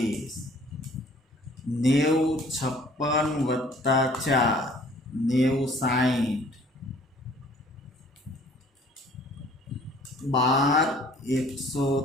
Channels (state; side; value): normal; both; correlation 0.55